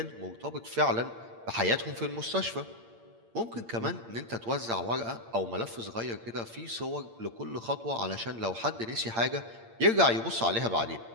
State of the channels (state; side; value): late; left; 8.7 ms